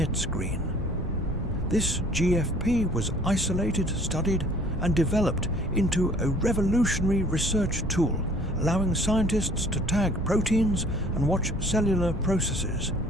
green. This GFP was isolated, studied, and developed into a revolutionary research tool, allowing scientists to tag proteins and watch cellular processes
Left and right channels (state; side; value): normal; both; correlation 0.54